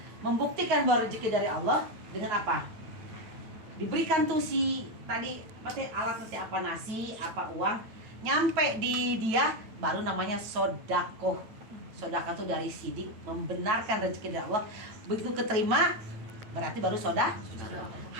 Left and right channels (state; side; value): late; left; 9.1 ms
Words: Membuktikan bahwa rezeki dari Allah dengan apa? Diberikan tuh si tadi alat nanti apa, nasi, apa uang, nyampe di dia baru namanya sodakoh. Sodakoh itu dari sidik, membenarkan rezeki dari Allah. Begitu keterima berarti baru